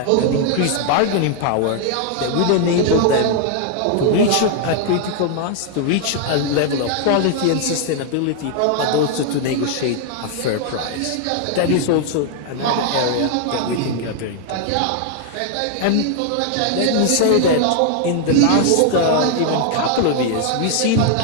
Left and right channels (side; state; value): both; different; correlation 0.00